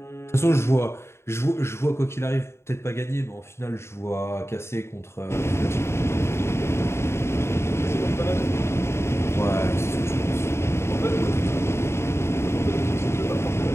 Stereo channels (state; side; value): late; right; 0.13 ms